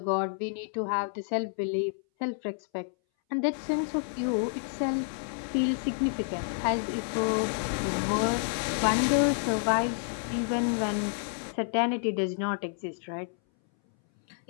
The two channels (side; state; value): right; silent; 58 dB below the other